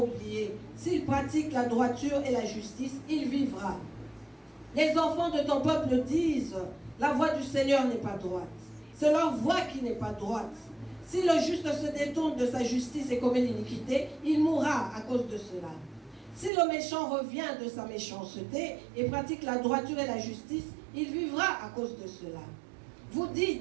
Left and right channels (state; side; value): drops out; left; at 16.5 s